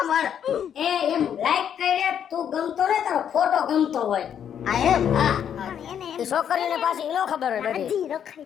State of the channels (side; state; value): right; quieter; 8.8 dB